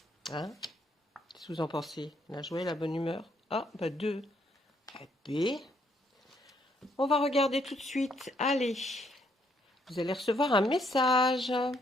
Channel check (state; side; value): normal; both; correlation 0.71